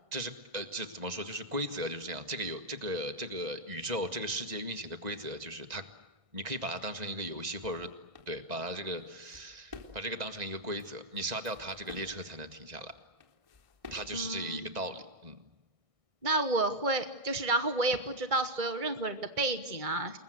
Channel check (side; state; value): left; late; 1.6 ms